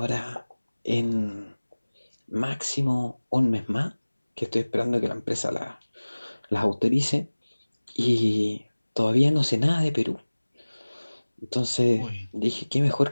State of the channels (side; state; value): both; inverted; correlation -1.00